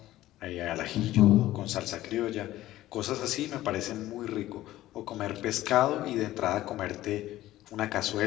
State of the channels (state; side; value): quieter; right; 15.1 dB